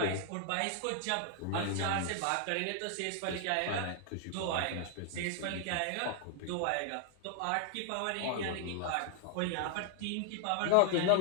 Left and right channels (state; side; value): different; both; correlation 0.00